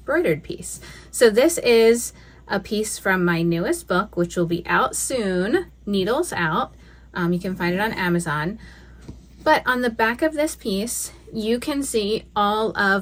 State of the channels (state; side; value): identical; both; correlation 1.00